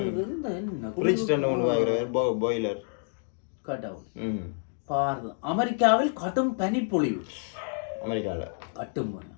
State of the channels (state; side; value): silent; right; 56 dB below the other